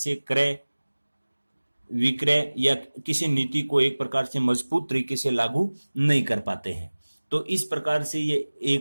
क्रय विक्रय या किसी नीति को एक प्रकार से मजबूत तरीके से लागू नहीं कर पाते हैं। तो इस प्रकार से ये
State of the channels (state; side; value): inverted; both; correlation -1.00